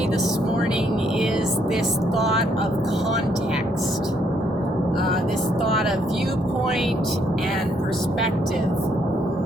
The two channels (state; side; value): normal; both; correlation 0.71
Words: this morning is this thought of context, this thought of viewpoint and perspective.